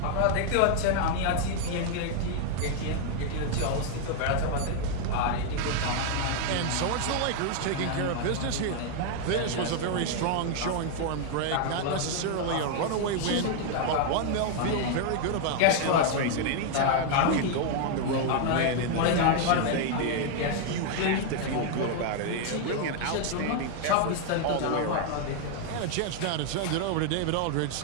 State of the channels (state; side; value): different; both; correlation 0.00